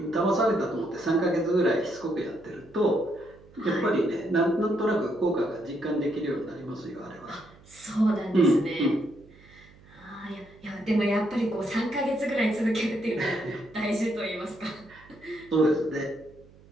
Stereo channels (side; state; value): right; noise; hum, 25 dB below the sound